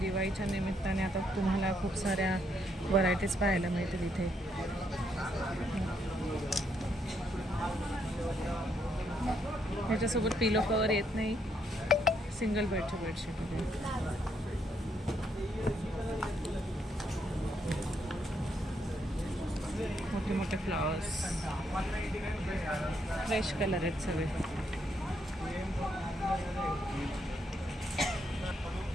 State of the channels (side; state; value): both; normal; correlation 0.75